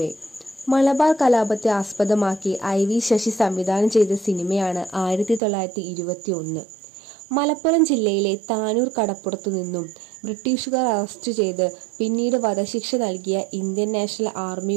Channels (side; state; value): left; drops out; at 5.4 s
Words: മലബാർ കലാപത്തെ ആസ്പദമാക്കി IV ശശി സംവിധാനം ചെയ്ത സിനിമയാണ് 1921. മലപ്പുറം ജില്ലയിലെ താനൂർ കടപ്പുറത്തു നിന്നും ബ്രിട്ടീഷുകാർ അറസ്റ്റ് ചെയ്ത് പിന്നീട് വധശിക്ഷ നൽകിയ ഇന്ത്യൻ നാഷണൽ